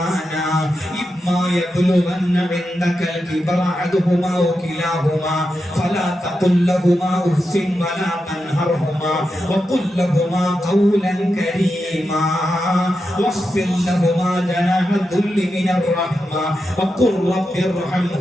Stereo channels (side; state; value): both; normal; correlation 0.88